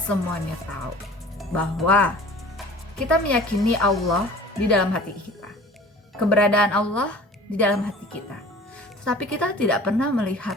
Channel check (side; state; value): both; normal; correlation 0.45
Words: tahu bahwa kita meyakini Allah di dalam hati kita, keberadaan Allah di dalam hati kita. Tetapi kita tidak pernah